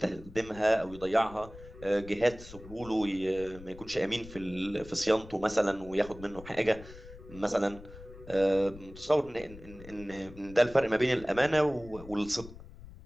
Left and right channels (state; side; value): noise; left; rumble, 17 dB below the sound